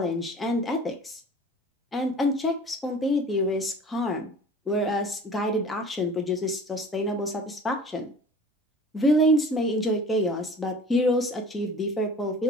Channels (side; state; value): both; normal; correlation 0.43